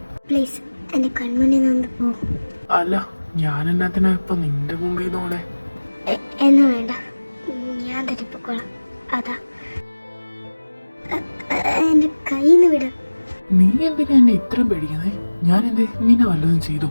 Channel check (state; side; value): inverted; both; correlation -1.00